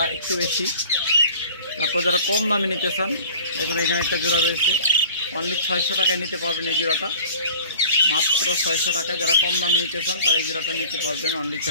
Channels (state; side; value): inverted; both; correlation -0.45